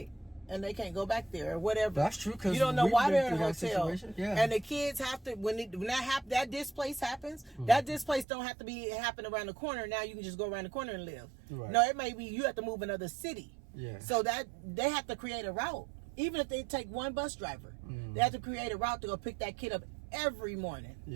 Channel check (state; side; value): drops out; left; at 8.2 s